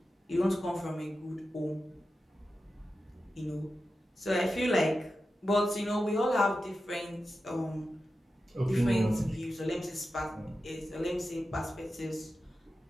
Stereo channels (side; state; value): both; normal; correlation 0.92